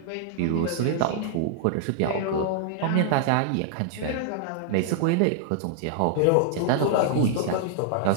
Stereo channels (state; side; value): different; both; correlation -0.01